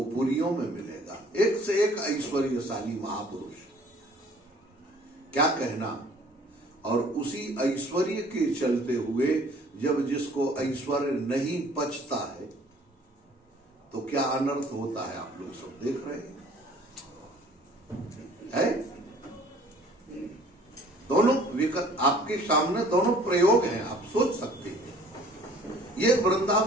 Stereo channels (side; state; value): both; normal; correlation 0.54